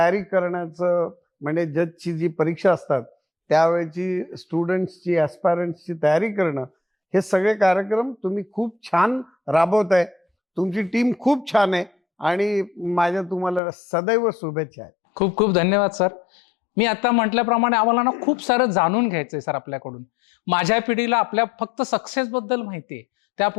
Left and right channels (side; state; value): right; drops out; at 13.6 s